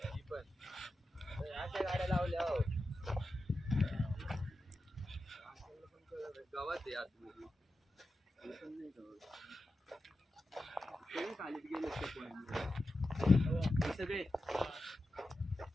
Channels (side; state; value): both; normal; correlation 0.91